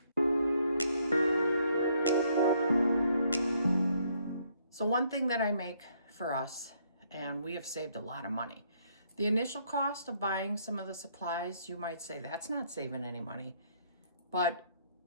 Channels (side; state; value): both; inverted; correlation -0.69